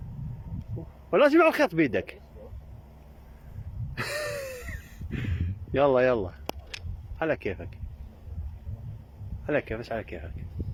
ولازم على الخيط بيدك. يلا يلا على كيفك، على كيفك، على كيفك.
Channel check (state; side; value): identical; both; correlation 1.00